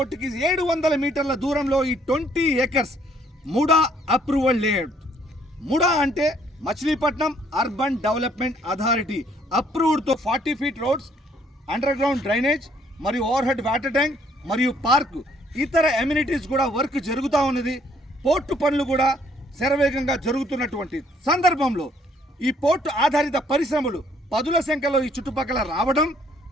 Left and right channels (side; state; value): both; normal; correlation 0.65